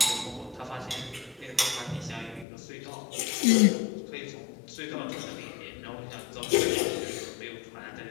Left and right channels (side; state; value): right; drops out; at 2.5 s